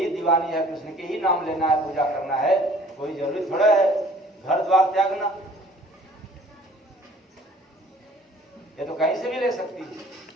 दीवानी है, कृष्ण के ही नाम लेना है, पूजा करना है, कोई जरूरी थोड़ा है घर द्वार त्यागना। ये तो कहीं से भी ले सकती है।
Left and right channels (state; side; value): normal; both; correlation 0.53